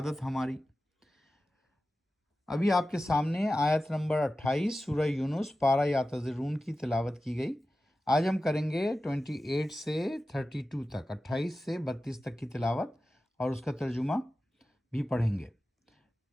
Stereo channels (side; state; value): both; normal; correlation 0.94